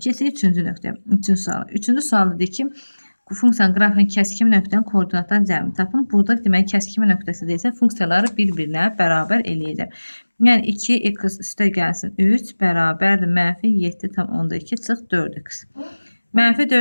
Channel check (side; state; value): both; inverted; correlation -1.00